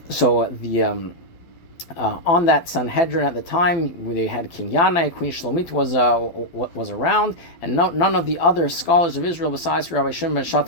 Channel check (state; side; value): late; right; 12 ms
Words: So on that Sanhedrin at the time, where they had King Yanai, Queen Shlomit was around, and none of the other scholars of Israel besides Rabbi Shimon ben